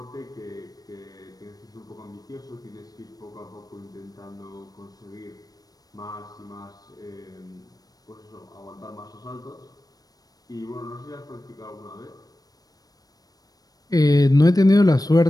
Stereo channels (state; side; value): late; right; 0.18 ms